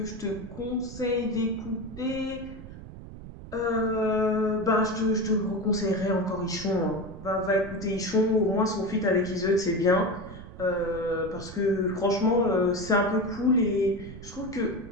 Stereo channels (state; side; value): noise; right; rumble, 14 dB below the sound